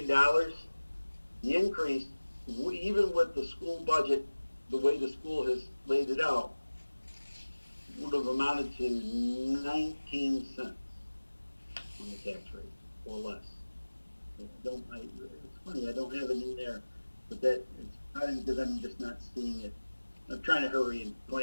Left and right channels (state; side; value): inverted; both; correlation -1.00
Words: the increase, even with the school budget, the way the school has laid it out, would have amounted to 19 cents on the tax rate, or less. It's funny, I don't have it in there, but it's probably because I'm just not seeing it. I'm trying to hurry and